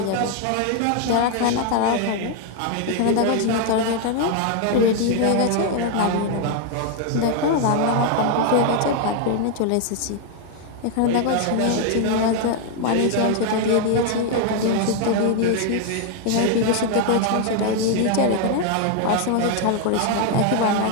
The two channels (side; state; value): both; different; correlation 0.00